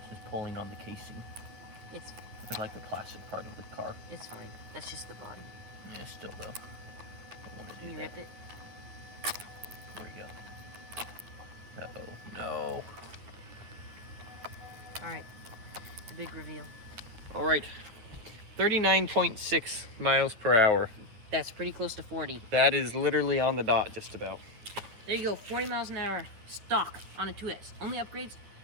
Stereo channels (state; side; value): late; left; 9.9 ms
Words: is pulling on the casing. It's like the plastic part of the car. It's fine. That's just the body. Yeah, still though. Can you rip it? There we go. Uh-oh. No. Alright. The big reveal. Alright. 39.6 miles per hour. That's pretty close to 40. That is literally on the dot, just about. There you go. 40 miles an hour stock on a 2S. Only upgrades